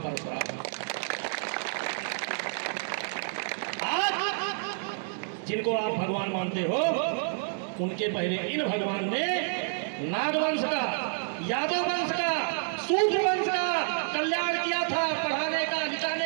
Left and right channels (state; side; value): silent; left; 59 dB below the other